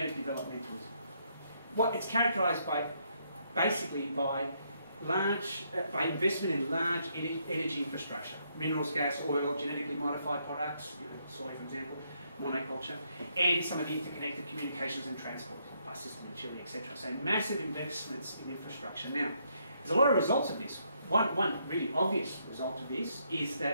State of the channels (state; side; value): inverted; both; correlation -0.74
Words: What it's characterised by, basically, by investment in large energy infrastructure, minerals, gas, oil, genetically modified products, soy, for example, monoculture, and some of the interconnected communications and transport, bus system in Chile, etc. So massive investments in infrastructure. Now, there's a lot of results of this. One really obvious result of this is